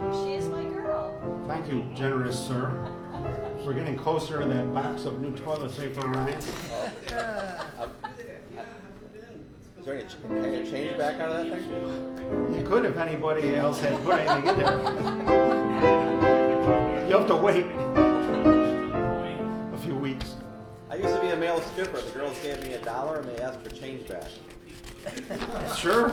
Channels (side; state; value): both; identical; correlation 1.00